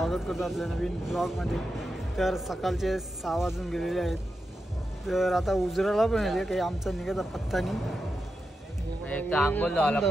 करतो आपल्या नवीन ब्लॉगमध्ये. तर सकाळचे 6 वाजून गेलेले आहेत. तर आता उजराला पण येते काही आमचा निघायचा पत्ता नाही. आंघोळ झाला,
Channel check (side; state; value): both; normal; correlation 0.88